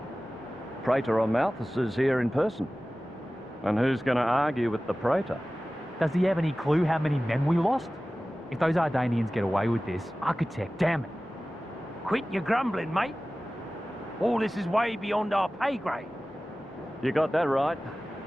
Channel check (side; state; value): both; normal; correlation 0.97